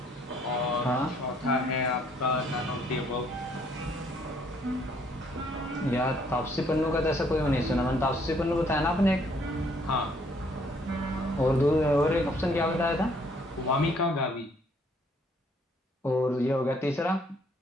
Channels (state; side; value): normal; both; correlation 0.65